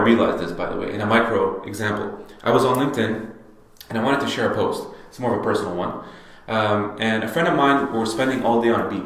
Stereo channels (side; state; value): both; identical; correlation 1.00